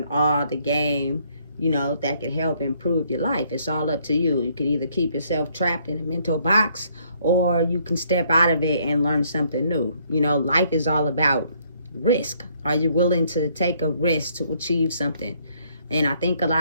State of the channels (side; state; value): both; inverted; correlation -0.67